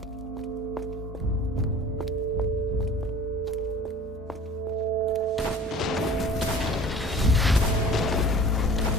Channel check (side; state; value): both; normal; correlation 0.44